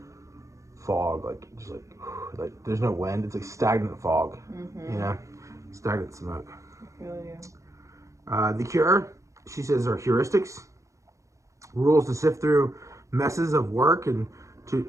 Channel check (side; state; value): left; late; 0.15 ms